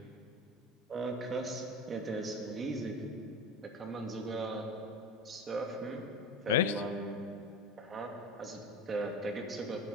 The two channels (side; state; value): both; normal; correlation 0.29